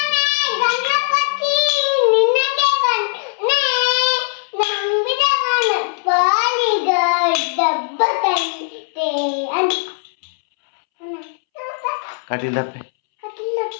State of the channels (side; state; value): right; silent; 67 dB below the other